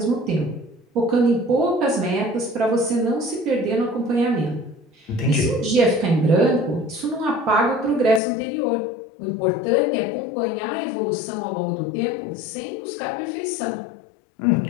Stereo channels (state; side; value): drops out; right; at 8.2 s